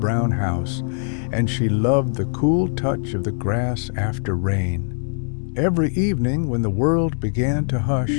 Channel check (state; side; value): silent; right; 64 dB below the other